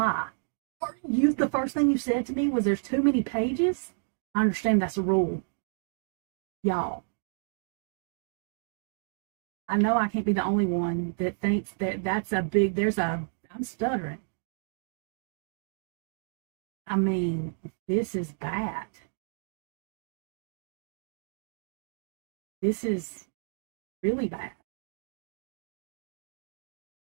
Or you, the first thing you said to me was there's too many pages. I understand that's a rule. Y'all, I know I can't be the only one that thinks that that's a big, I'm stuttering. I mean, this is bad. This is really bad.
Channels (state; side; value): silent; left; digital silence